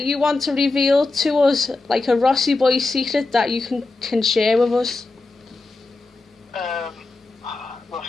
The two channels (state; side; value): quieter; right; 3.4 dB